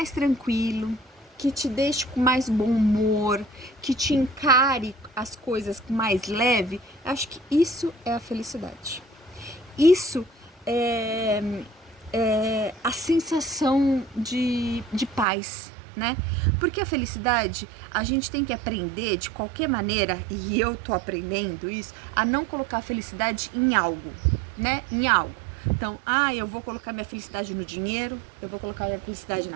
tranquilo, que te deixe com mais bom humor, que te encare as coisas com mais leve, acho que isso é a felicidade. Isso é a sensação de paz, né? Porque a felicidade, a gente tem que aprender de qualquer maneira, e eu tô aprendendo isso, a não colocar a felicidade em algo, né? Em algo. Então, eu vou colocar minha felicidade no dinheiro, eu vou colocar minha felicidade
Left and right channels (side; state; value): left; drops out; at 15.2 s